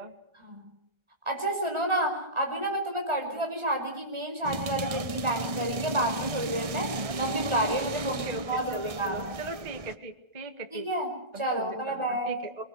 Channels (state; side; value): late; left; 1.6 ms